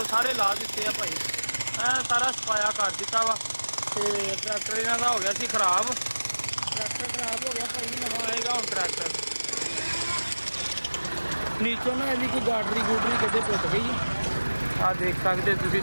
ਸਾਰੇ ਲਾ ਦਿੱਤੇ ਆ ਭਾਈ, ਐ ਸਾਰਾ ਸਫਾਇਆ ਕਰ ਦਿੱਤਾ ਵਾ। ਤੇ ਟਰੈਕਟਰ ਇਹਨਾਂ ਦਾ ਹੋ ਗਿਆ ਸੀ ਖਰਾਬ। ਟਰੈਕਟਰ ਖਰਾਬ ਹੋ ਗਿਆ ਭਾਈ, ਨਵਾਂ ਆਏਗਾ ਹੁਣ ਟਰੈਕਟਰ। ਨੀਚੋਂ ਨਾ ਇਹਦੀ ਕੋਈ ਗਾਡਰੀ ਗੂਡਰੀ ਕਿਤੇ ਟੁੱਟ ਗਈ। ਆ ਦੇਖ ਸਕਦੇ ਤੁਸੀਂ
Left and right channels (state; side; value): inverted; both; correlation -1.00